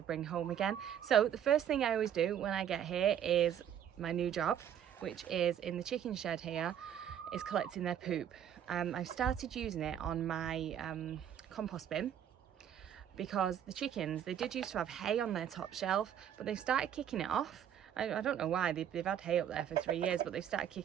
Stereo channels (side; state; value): left; quieter; 9.6 dB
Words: bring home again. So the first thing I always do when I get here is my new job, which is in the chicken shed here, is collecting their poop. I've started using it on my compost bin because the chickens, they did used to have hay on their top shelf, but they've started kicking it off. I don't know why, they've had hay up there for 3 years, but they've started